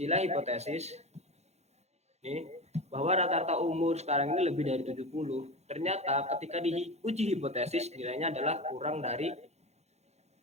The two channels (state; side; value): late; left; 0.32 ms